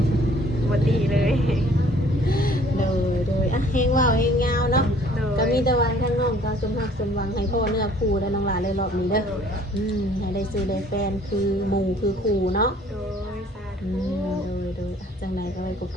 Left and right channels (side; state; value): both; normal; correlation 0.56